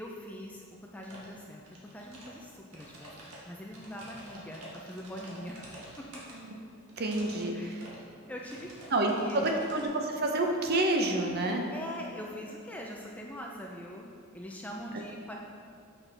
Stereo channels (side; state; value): both; normal; correlation 0.19